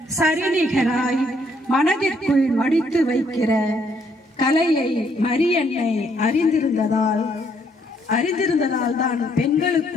சரிநிகராய் மனதிற்குள் மடித்து வைக்கிற கலையை மரியன்னை அறிந்திருந்ததால் தான்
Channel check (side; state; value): both; normal; correlation 0.70